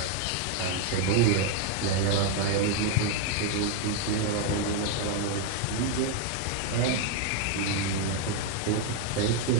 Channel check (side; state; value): both; different; correlation 0.01